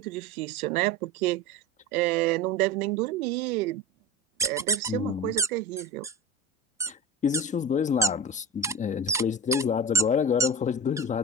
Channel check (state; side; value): normal; both; correlation 0.31